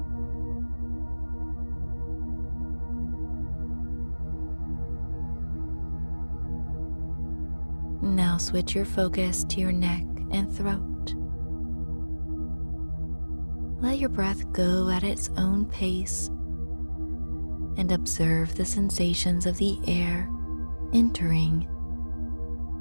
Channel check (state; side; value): inverted; both; correlation -1.00